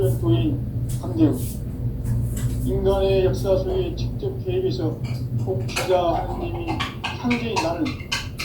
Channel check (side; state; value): both; identical; correlation 1.00